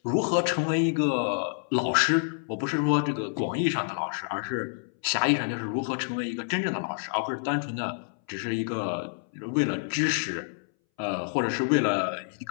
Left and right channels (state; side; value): silent; right; 59 dB below the other